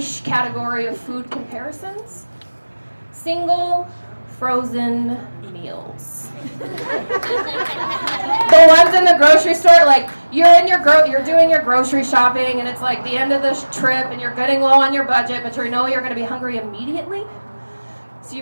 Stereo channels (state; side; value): inverted; both; correlation -1.00